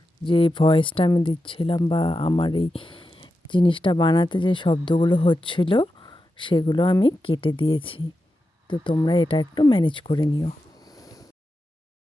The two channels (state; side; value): normal; both; correlation 0.89